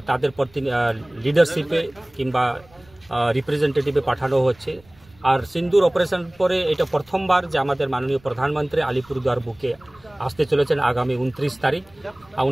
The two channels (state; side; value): noise; right; rumble, 28 dB below the sound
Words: তাদের লিডারশিপে কিংবা রিপ্রেজেন্টেটিভে পাঠানো হচ্ছে। আর সিন্দুর অপারেশন পরে এটা প্রথমবার যে আমাদের মাননীয় প্রধানমন্ত্রী আলিপুরদুয়ার বুকে আসতে চলেছেন আগামী 29 তারিখ।